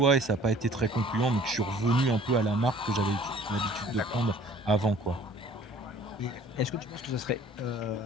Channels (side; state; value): both; normal; correlation 0.53